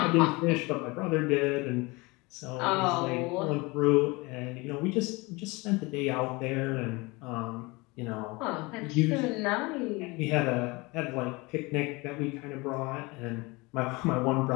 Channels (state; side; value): quieter; right; 24.9 dB